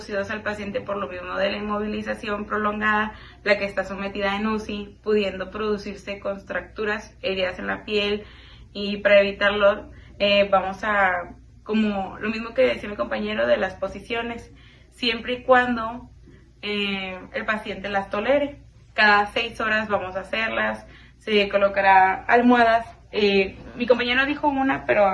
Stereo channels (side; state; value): both; identical; correlation 1.00